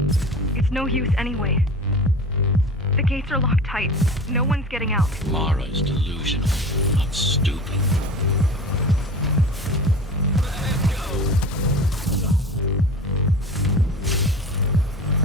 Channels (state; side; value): normal; both; correlation 0.36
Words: It's no use anyway. The gates are locked tight. No one's getting out. Mara is delusional, not stupid.